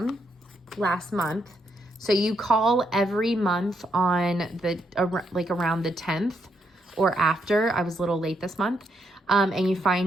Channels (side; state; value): both; normal; correlation 0.77